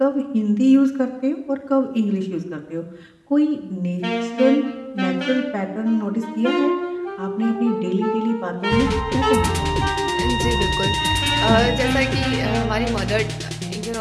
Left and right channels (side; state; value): both; identical; correlation 1.00